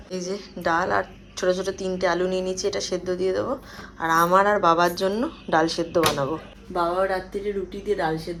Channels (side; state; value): both; identical; correlation 1.00